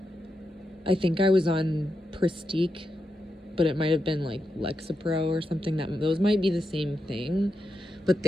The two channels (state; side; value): normal; both; correlation 0.86